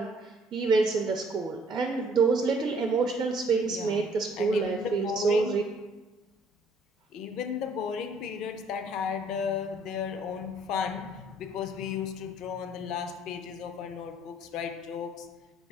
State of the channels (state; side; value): normal; both; correlation 0.61